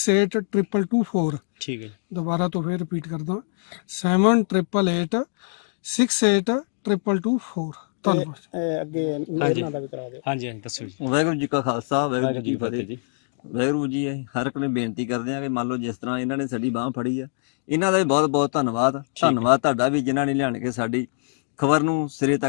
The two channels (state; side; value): silent; right; digital silence